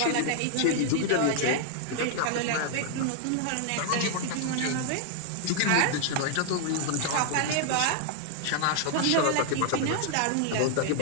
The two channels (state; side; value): different; both; correlation 0.00